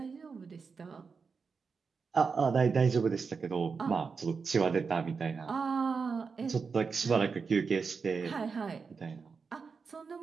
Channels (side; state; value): left; quieter; 5.2 dB